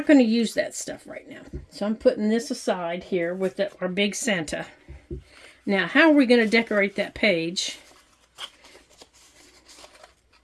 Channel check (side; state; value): both; identical; correlation 1.00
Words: going to use that stuff right now. So I'm putting this aside here with our big Santa. Now, how are we going to decorate that page?